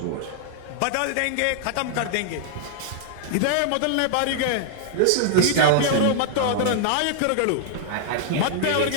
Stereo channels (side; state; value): both; different; correlation -0.01